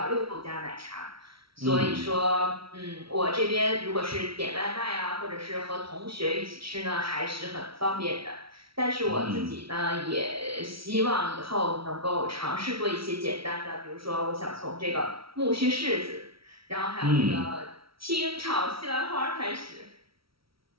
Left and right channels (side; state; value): left; late; 0.75 ms